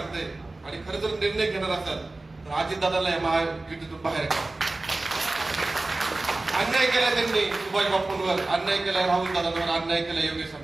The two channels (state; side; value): quieter; left; 3.0 dB